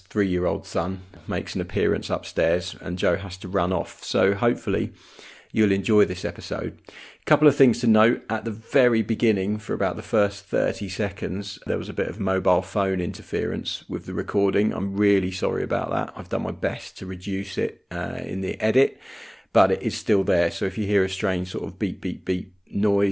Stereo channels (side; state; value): both; identical; correlation 1.00